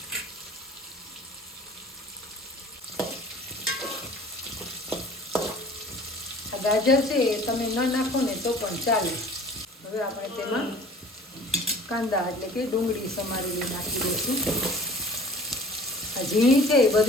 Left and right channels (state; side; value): normal; both; correlation 0.47